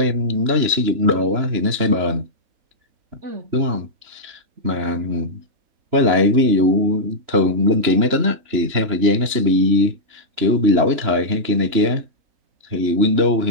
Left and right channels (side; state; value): left; late; 3.0 ms